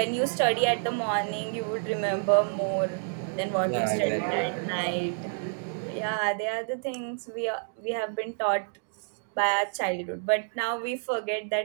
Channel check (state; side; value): silent; left; digital silence